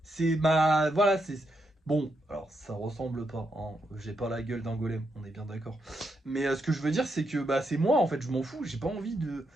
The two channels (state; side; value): normal; both; correlation 0.81